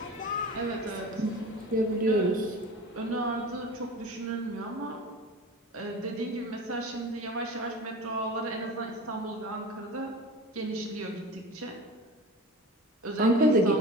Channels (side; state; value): both; normal; correlation 0.34